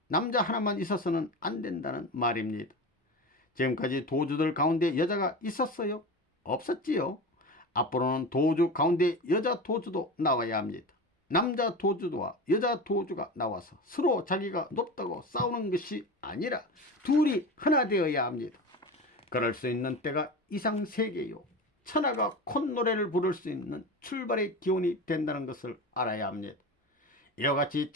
남자 하나만 있어서는 안 된다는 말입니다. 지금까지 도주들 가운데 여자가 있었어요? 없었지요. 앞으로는 도주 가운데 여자 도주도 나와야 합니다. 남자 도주와 여자 도주가 나와서 서로 자기가 높다고 싸우는 것이 아니라 둘이 하나 되어야 합니다. 그럴 수 있는 때가 이상세계요. 천하가 콧노래를 부를 수 있는 출발의 기원이 된다는 것을 알아야 합니다. 이와 같이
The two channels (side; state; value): both; normal; correlation 0.27